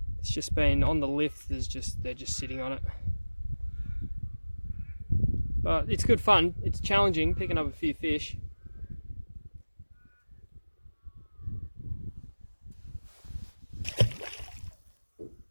It's just been on the lift, they're just sitting on it. But it's good fun. It's challenging picking up a few fish.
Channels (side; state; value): both; inverted; correlation -1.00